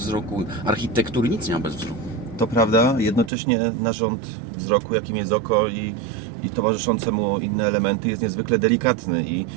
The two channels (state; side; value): drops out; left; at 3.3 s